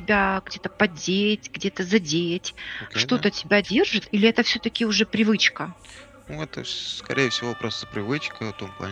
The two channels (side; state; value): both; identical; correlation 1.00